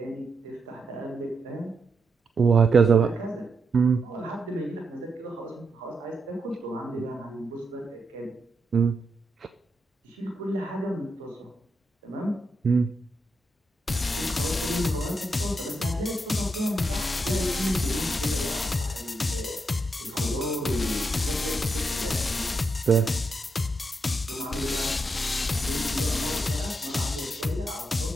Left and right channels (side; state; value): both; normal; correlation 0.83